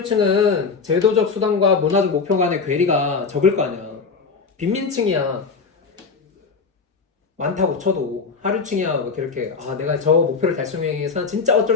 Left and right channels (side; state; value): right; quieter; 4.9 dB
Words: 제도적 수단과 문화적 목표 간의 괴리가 적을 거 아니야. 빈민층이야. 많다고 쳐도 하류층이야 뭐 이렇게 내가 저 목표를 달성하기 위해서 진짜 어쩔